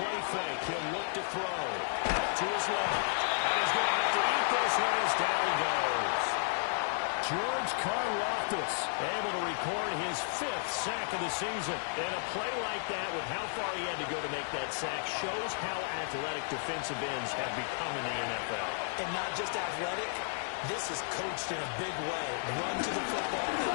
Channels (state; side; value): silent; right; digital silence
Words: fake, he'll look to throw. Out to his left. And he's going to have to eat this one as down he goes. George Karlaftis able to record his 5th sack of the season. And a play like that with how far he had to go to make that sack shows how athletic defensive ends have become in the NFL. And not just athletic, this is coached in a big way. Run to the football